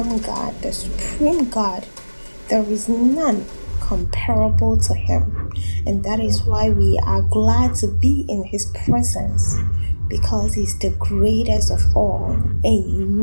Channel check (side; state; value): both; inverted; correlation -1.00